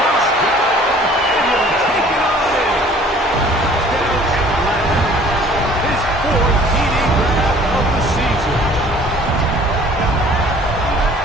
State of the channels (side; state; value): both; normal; correlation 0.52